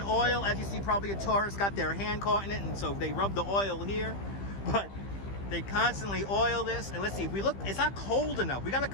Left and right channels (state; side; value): late; right; 15 ms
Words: oil. As you see, probably a tourist got their hand caught in it, and so they rub the oil here. But they constantly oil this. And let's see, if we look, it's not cold enough. We got to